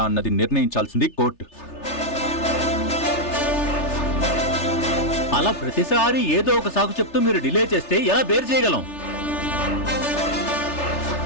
అన్నది నిర్ణయించాల్సింది కోర్టు. అలా ప్రతిసారి ఏదో ఒక సాకు చెప్తూ మీరు డిలే చేస్తే ఎలా బేర్ చేయగలం?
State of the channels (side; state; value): right; late; 3.3 ms